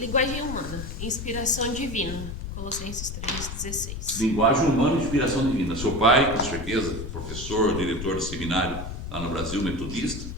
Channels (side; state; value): left; noise; rumble, 7 dB below the sound